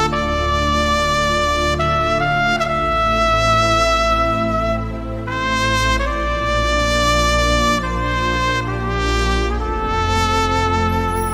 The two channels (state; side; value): identical; both; correlation 1.00